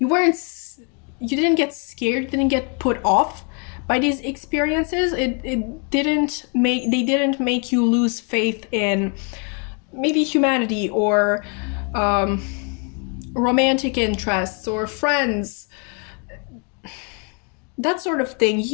get scared, you didn't get put off by these experiences. They didn't make you lose faith in maybe humanity or romantic interests or friends, that sort of thing.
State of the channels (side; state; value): right; quieter; 37.0 dB